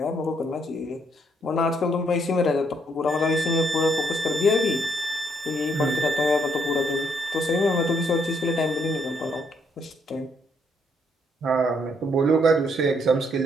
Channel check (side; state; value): both; normal; correlation 0.72